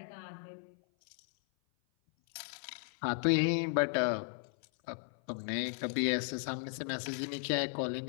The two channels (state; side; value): silent; right; 54 dB below the other